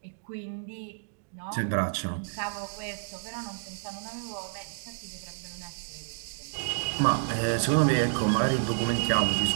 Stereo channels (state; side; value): silent; left; digital silence